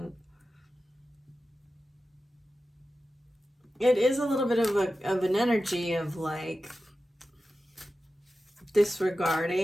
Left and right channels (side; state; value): both; normal; correlation 0.93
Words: it is a little bit of an energy of like